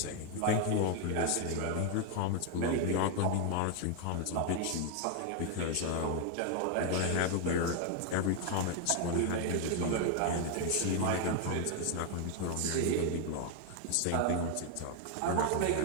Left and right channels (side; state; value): both; different; correlation 0.01